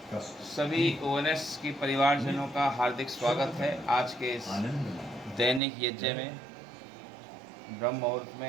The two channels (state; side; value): drops out; left; at 5.6 s